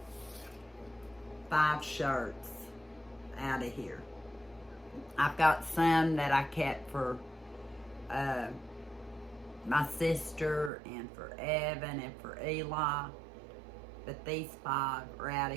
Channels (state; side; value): drops out; left; at 10.7 s